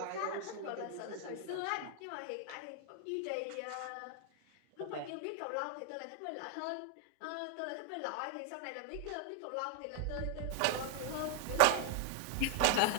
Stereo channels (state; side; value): different; both; correlation 0.00